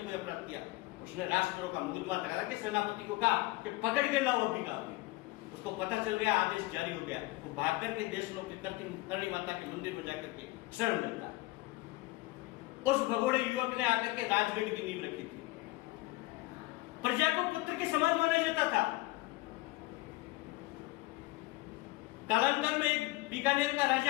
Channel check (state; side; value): quieter; right; 20.5 dB